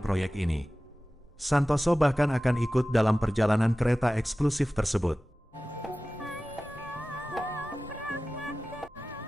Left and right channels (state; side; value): normal; both; correlation 0.96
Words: proyek ini. Santoso bahkan akan ikut dalam perjalanan kereta eksklusif tersebut.